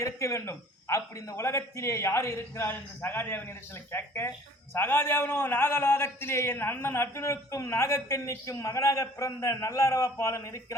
இருக்க வேண்டும். அப்படி இந்த உலகத்திலே யார் இருக்கிறார் என்று சகாதேவனிடத்தில் கேட்க, சகாதேவனோ நாகலோகத்திலே என் அண்ணன் அர்ஜுனனுக்கும் நாகக்கன்னிக்கும் மகனாக பிறந்த நல்லறவப்பாளன்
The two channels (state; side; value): normal; both; correlation 0.51